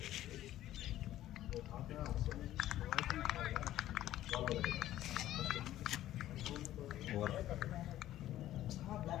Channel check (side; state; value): right; quieter; 13.6 dB